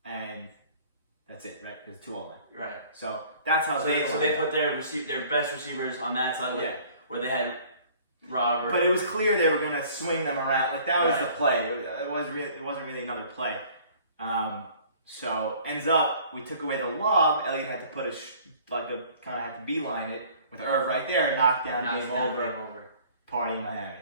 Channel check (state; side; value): inverted; both; correlation -0.52